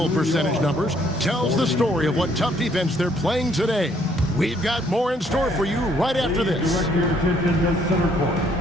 percentage numbers tells the story of what tough defense they're playing today. We've got more in store for you right after this. Direct your attention to center court.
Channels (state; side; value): normal; both; correlation 0.66